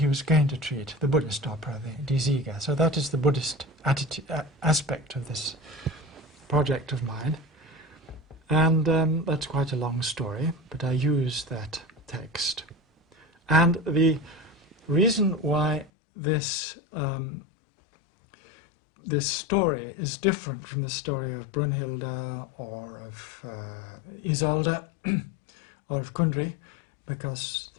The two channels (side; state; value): right; drops out; at 15.9 s